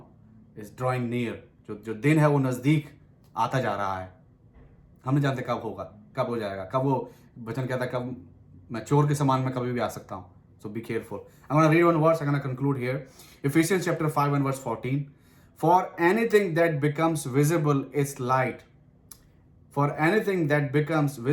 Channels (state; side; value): identical; both; correlation 1.00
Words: drawing near. जो दिन है वो नजदीक आता जा रहा है। हम नहीं जानते कब होगा, कब हो जाएगा, कब वो वचन कहता है, कब मैं चोर के समान में कभी भी आ सकता हूँ। So be careful. I'm going to read one verse. I'm going to conclude here. Ephesians chapter 5 and verse 14. For anything that becomes visible is light. For anything that becomes